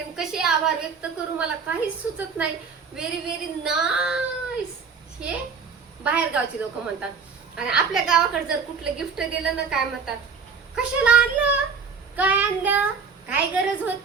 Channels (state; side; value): quieter; left; 5.5 dB